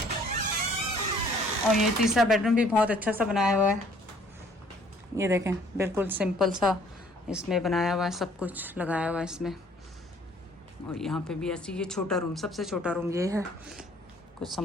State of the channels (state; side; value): normal; both; correlation 0.58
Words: और ये तीसरा बेडरूम भी बहुत अच्छा सा बनाया हुआ है। ये देखें, बिल्कुल सिंपल सा इसमें बनाया हुआ है, सब कुछ लगाया हुआ है इसमें। और यहाँ पे भी ऐसी, ये छोटा रूम, सबसे छोटा रूम ये है। कुछ